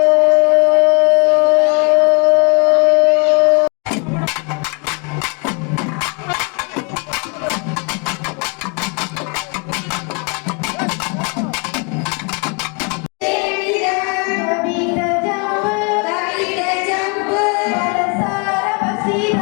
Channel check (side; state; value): right; quieter; 34.6 dB